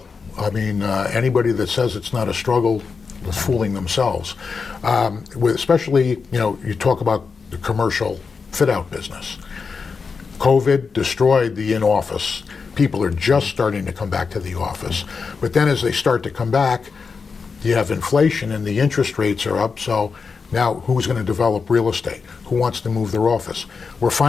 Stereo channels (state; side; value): quieter; right; 5.1 dB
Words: I mean, anybody that says it's not a struggle is fooling themselves. Especially, you talk about the commercial fit-out business. COVID destroyed the in-office. people are just starting to come back to the office. But then as they start to come back, you have inflation and the interest rates are up, so now who's going to develop real estate? Who wants to move their office? We're